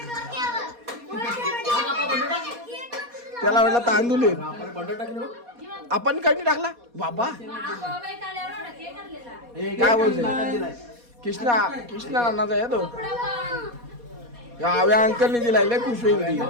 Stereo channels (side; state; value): left; late; 4.2 ms